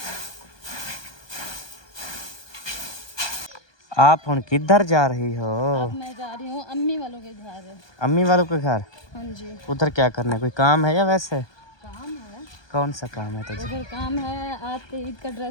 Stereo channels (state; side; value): late; right; 1.2 ms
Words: आप हुन किधर जा रही हो? अब मैं जा रही हूँ अम्मी वालों के घर। अम्मी वालों के घर? हाँ जी। उधर क्या करना है, कोई काम है या वैसे? काम है, कौन सा काम है तुझे? उधर काम है, आपके ईद का